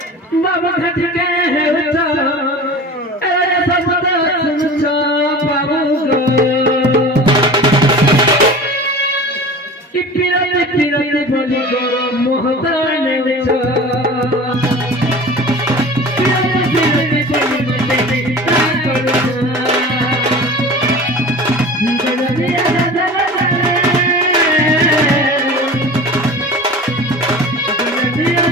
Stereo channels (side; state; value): both; normal; correlation 0.37